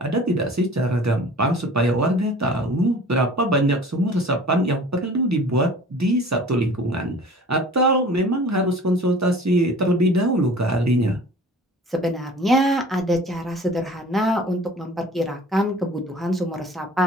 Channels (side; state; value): both; normal; correlation 0.45